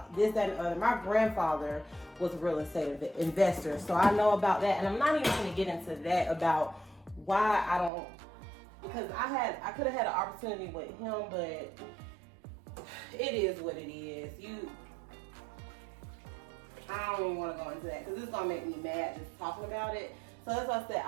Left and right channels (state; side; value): drops out; left; at 7.9 s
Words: this, that, and other. My grandfather was a real estate investor, so I know about that. And I'm not even going to get into that about why I don't, because I could have had an opportunity with him, but it is what it is. I don't even want to go into that, because it's going to make me mad just talking about it. So that's why I said